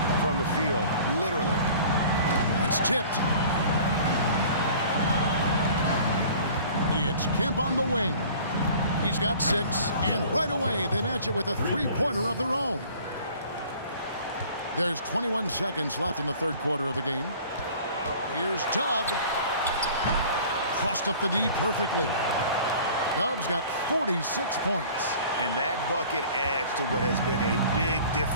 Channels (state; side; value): inverted; both; correlation -0.47